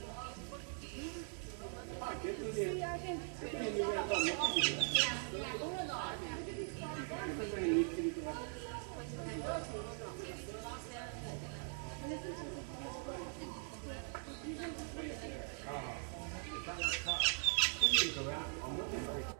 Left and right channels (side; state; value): left; silent; 50 dB below the other